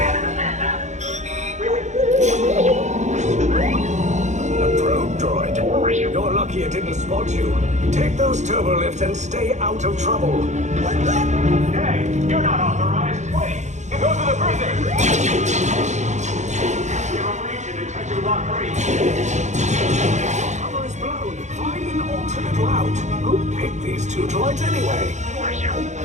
A probe droid. You're lucky it didn't spot you. Take those turbo lifts and stay out of trouble. Hey, you're not authorized. Wait, those are the prisoners. Give them reach and detention block 3. Cover is blown. Find an alternate route. Who picked these two droids anyway?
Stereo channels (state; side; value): late; left; 0.34 ms